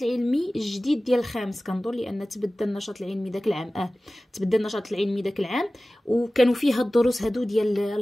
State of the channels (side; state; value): both; normal; correlation 0.97